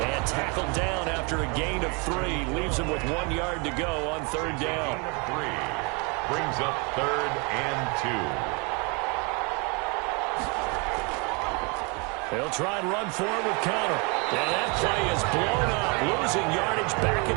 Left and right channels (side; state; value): left; quieter; 31.7 dB